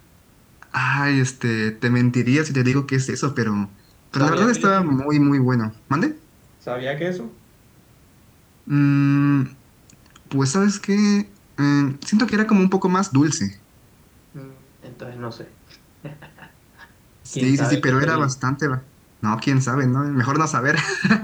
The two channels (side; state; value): both; identical; correlation 1.00